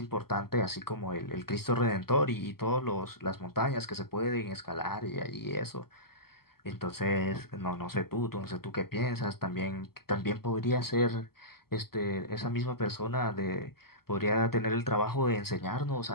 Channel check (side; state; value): right; late; 0.95 ms